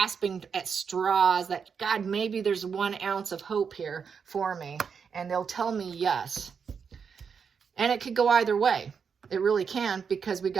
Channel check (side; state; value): left; quieter; 6.4 dB